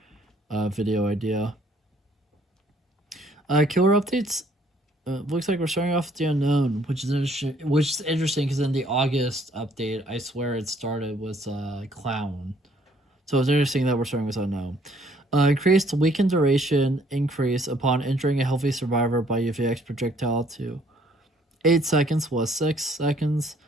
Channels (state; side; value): normal; both; correlation 0.63